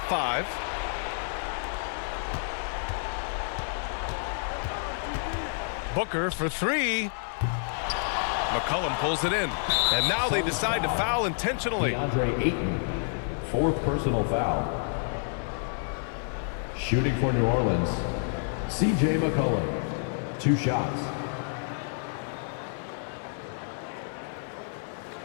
5. Booker for 3. McCollum pulls it in. And now they decide to foul intentionally. DeAndre Ayton, 4th personal foul. Shooting for New Orleans, C.J. McCollum, 2 shots.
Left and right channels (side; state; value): right; silent; digital silence